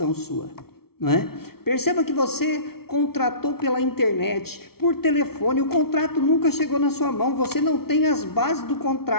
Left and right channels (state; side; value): late; right; 0.94 ms